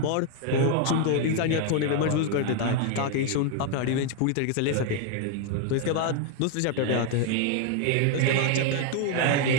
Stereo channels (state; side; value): different; both; correlation 0.00